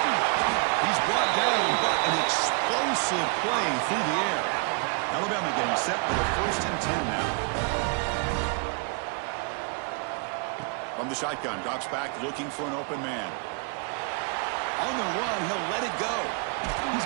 He's brought down, but an explosive play through the air. Alabama getting set for the 1st and 10 now. From the shotgun, drops back, looking for an open man. On the run, he'll let it go. He's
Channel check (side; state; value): left; quieter; 35.6 dB